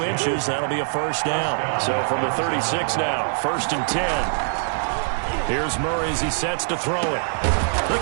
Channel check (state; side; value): silent; left; digital silence